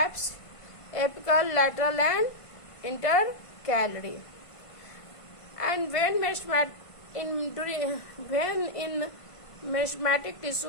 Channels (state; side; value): late; right; 1.5 ms